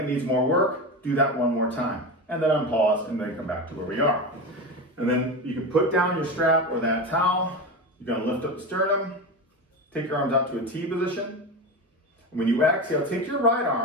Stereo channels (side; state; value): both; normal; correlation 0.22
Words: it needs more work, do that one more time. And then unpause and then come back to where we are. And then you can put down your strap or that towel. You're going to lift up the sternum, take your arms out to a T position. And when you exhale, take your right